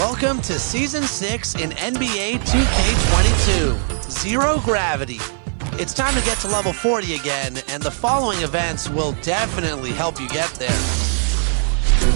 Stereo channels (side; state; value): left; silent; digital silence